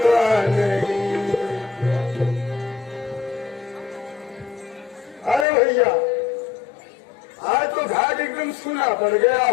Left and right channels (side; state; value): right; drops out; at 5.5 s